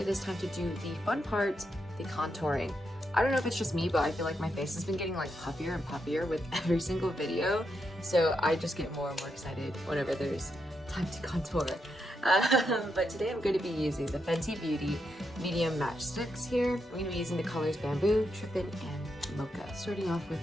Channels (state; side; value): normal; both; correlation 0.83